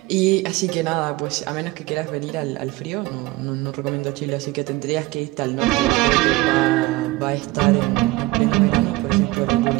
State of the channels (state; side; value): quieter; left; 20.3 dB